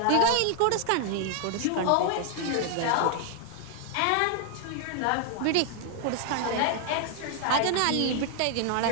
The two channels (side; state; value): both; different; correlation 0.00